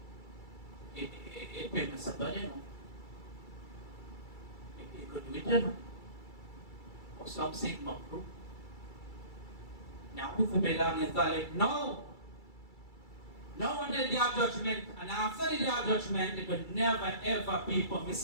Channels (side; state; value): right; late; 2.3 ms